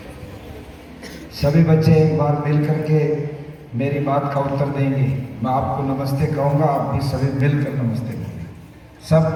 सभी बच्चे एक बार मिल करके मेरी बात का उत्तर देंगे। मैं आपको नमस्ते कहूँगा, आप भी सभी मिलकर नमस्ते करेंगे।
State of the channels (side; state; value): both; identical; correlation 1.00